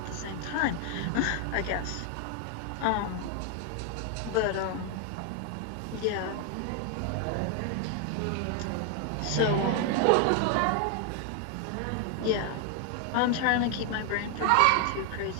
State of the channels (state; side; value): different; both; correlation 0.00